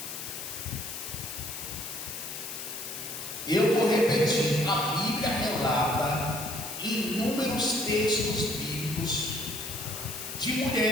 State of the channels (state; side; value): noise; left; hiss, 8 dB below the sound